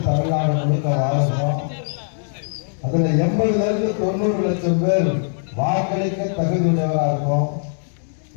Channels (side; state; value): right; silent; 65 dB below the other